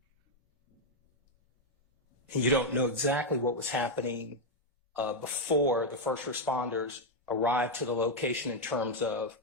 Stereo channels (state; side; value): normal; both; correlation 0.01